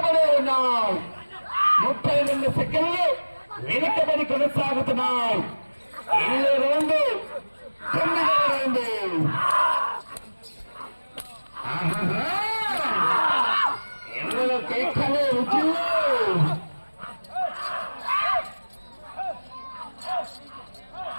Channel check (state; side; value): inverted; both; correlation -1.00